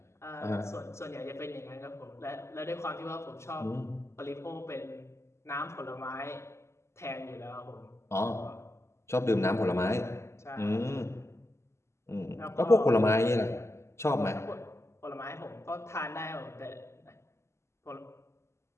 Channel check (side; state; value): right; late; 0.13 ms